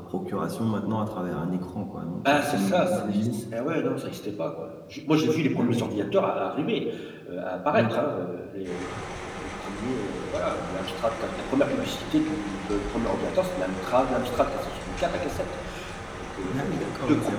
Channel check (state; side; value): identical; both; correlation 1.00